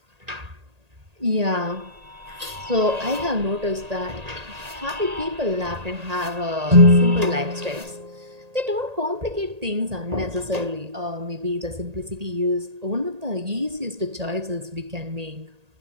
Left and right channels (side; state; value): left; late; 1.8 ms